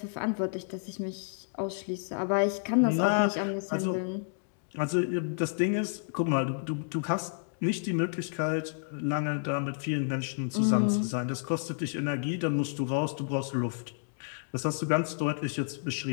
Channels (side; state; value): right; silent; digital silence